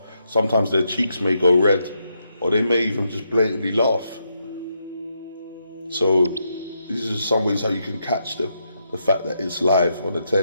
Sometimes their cheeks may go red, or they may even just blatantly laugh. So these are some ways how you can catch the fact that it's live on the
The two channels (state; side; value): inverted; both; correlation -0.81